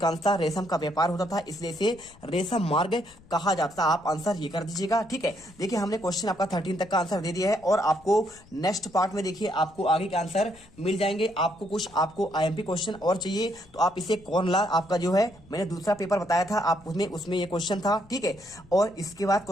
रेशम का व्यापार होता था, इसलिए इसे रेशम मार्ग कहा जाता था। आप आंसर ये कर दीजिएगा। ठीक है, देखिए हमने क्वेश्चन आपका 13 तक का आंसर दे दिया है और आपको नेक्स्ट पार्ट में देखिए आपको आगे के आंसर मिल जाएंगे। आपको कुछ आपको IMP क्वेश्चन और चाहिए तो आप इसे कौन ला आपका जो है मैंने दूसरा पेपर बताया था आप उसमें ये क्वेश्चन था। ठीक है, और इसके बाद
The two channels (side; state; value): left; noise; rumble, 25 dB below the sound